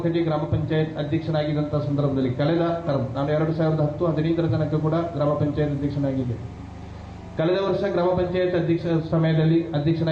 ಗ್ರಾಮ ಪಂಚಾಯತ್ ಅಧ್ಯಕ್ಷನಾಗಿದ್ದಂಥ ಸಂದರ್ಭದಲ್ಲಿ ಕಳೆದ ಟರ್ಮ್ ನಾನು 2010-15 ತನಕ ಕೂಡ ಗ್ರಾಮ ಪಂಚಾಯತ್ ಅಧ್ಯಕ್ಷನಾಗಿದ್ದೆ. ಕಳೆದ ವರ್ಷ ಗ್ರಾಮ ಪಂಚಾಯತ್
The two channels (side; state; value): both; identical; correlation 1.00